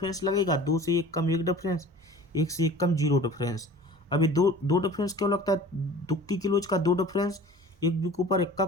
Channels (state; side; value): normal; both; correlation 0.43